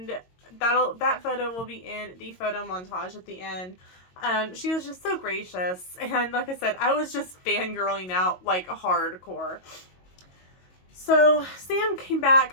that photo will be in the photo montage at the end. She was just so gracious, and like I said, I was just fangirling out like hardcore. So Sam came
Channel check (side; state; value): right; late; 22 ms